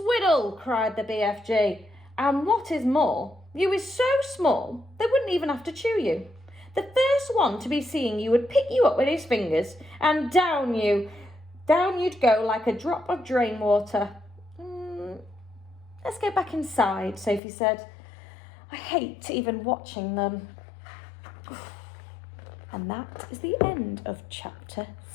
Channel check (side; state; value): right; drops out; at 17.4 s